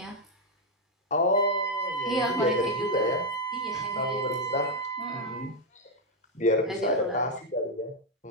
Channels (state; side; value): normal; both; correlation 0.00